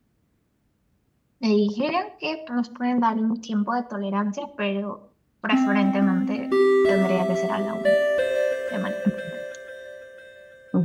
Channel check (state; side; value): identical; both; correlation 1.00